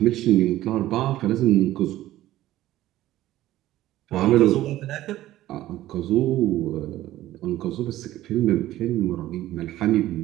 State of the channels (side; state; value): left; quieter; 14.8 dB